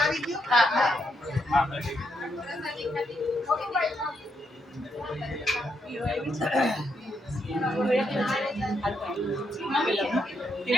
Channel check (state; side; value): normal; both; correlation 0.79